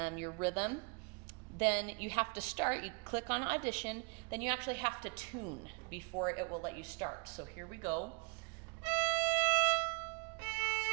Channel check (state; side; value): quieter; left; 32.1 dB